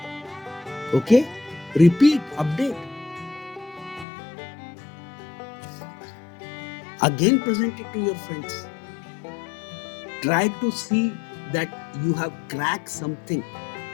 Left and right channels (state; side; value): drops out; right; at 4.0 s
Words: Okay? Repeat, update. Again present it to your friends. Try to see that you have cracked something.